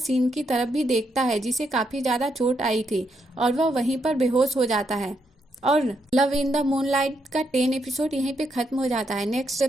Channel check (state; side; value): normal; both; correlation 0.79